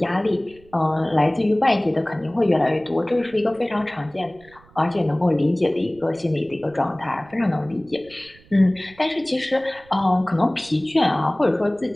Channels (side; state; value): right; noise; rumble, 26 dB below the sound